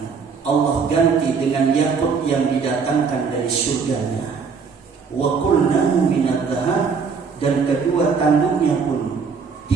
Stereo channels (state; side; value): quieter; left; 5.5 dB